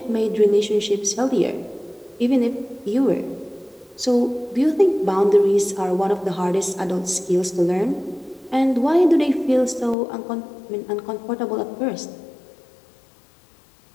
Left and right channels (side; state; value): right; drops out; at 10.0 s